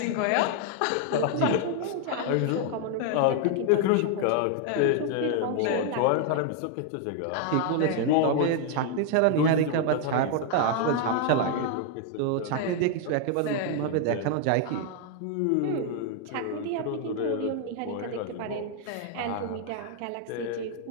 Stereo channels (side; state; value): both; different; correlation 0.00